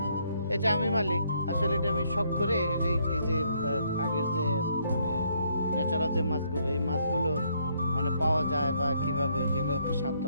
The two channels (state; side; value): inverted; both; correlation -0.70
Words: এটা আমি মালিক। আসলে এটা আমি শখ করে এই যে আগের যে মানে ন্যাচারাল যে মাছগুলো, এই মাছগুলো মানে পাওয়া যায় বা কিভাবে, যেগুলো একটু স্বাদ তো